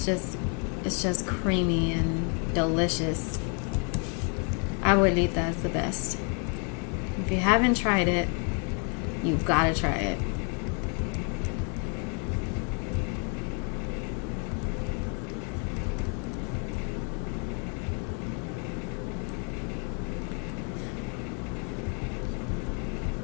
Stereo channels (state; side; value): quieter; right; 38.9 dB